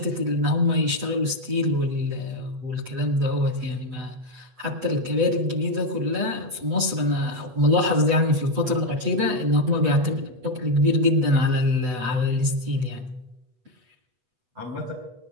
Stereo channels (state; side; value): late; left; 7.9 ms